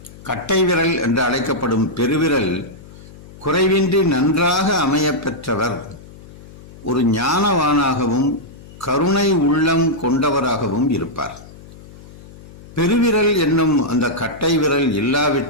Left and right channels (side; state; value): left; noise; hum, 19 dB below the sound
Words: கட்டை விரல் என்று அழைக்கப்படும் பெருவிரல் குறைவின்றி நன்றாக அமைய பெற்றவர் ஒரு ஞானவானாகவும் கருணை உள்ளம் கொண்டவராகவும் இருப்பார். பெருவிரல் என்னும் அந்த கட்டை விரல்